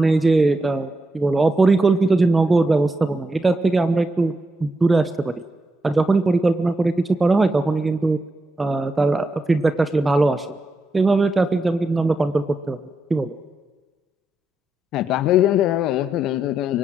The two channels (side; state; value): both; normal; correlation 0.84